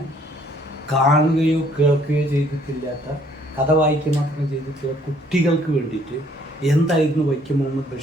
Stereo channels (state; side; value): normal; both; correlation 0.62